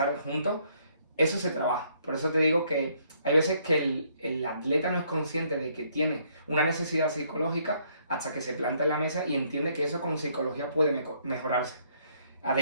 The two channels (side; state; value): both; inverted; correlation -0.68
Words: juntos, eso se trabaja. Por eso te digo que hay veces que el atleta no es consciente de que tiene una necesidad psicológica hasta que se planta en la mesa y entiende que eso con psicología puede mejorarse.